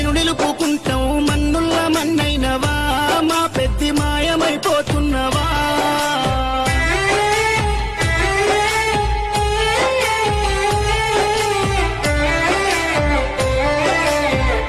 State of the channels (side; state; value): both; identical; correlation 1.00